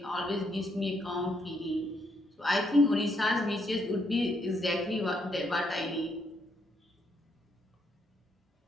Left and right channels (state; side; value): normal; both; correlation 0.75